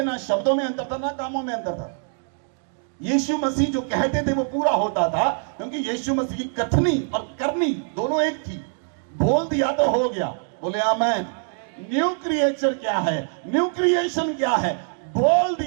ना शब्दों में अंतर था ना कामों में अंतर था। यीशु मसीह जो कहते थे वो पूरा होता था, क्योंकि यीशु मसीह की कथनी और करनी दोनों एक थी। बोल दिया तो हो गया। बोले आमीन। न्यू क्रिएचर क्या है? न्यू क्रिएशन क्या है? बोल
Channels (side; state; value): left; silent; 63 dB below the other